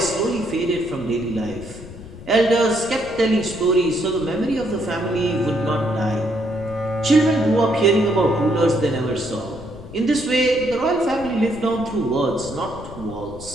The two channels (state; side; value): noise; left; rumble, 15 dB below the sound